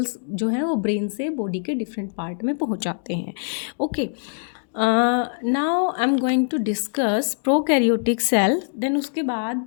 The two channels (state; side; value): silent; right; digital silence